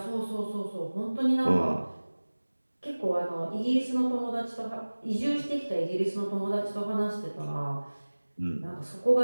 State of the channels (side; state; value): both; inverted; correlation -1.00